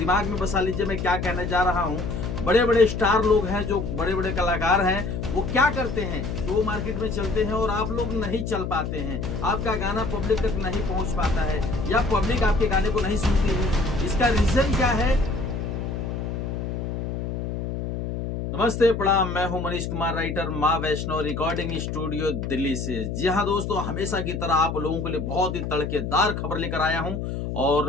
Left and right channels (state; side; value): noise; left; hum, 4 dB below the sound